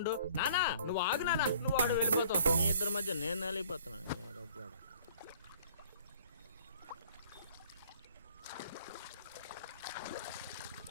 నానా నువ్వు ఆగు నానా, నువ్వు ఆడు వెళ్ళిపోతావు. మీ ఇద్దరి మధ్య నేను వెళ్ళిపోతున్నాను.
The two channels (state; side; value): inverted; both; correlation -0.55